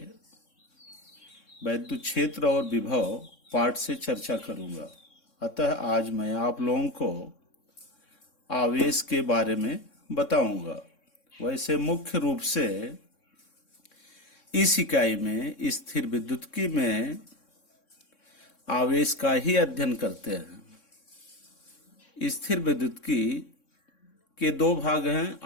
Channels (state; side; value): late; right; 3.6 ms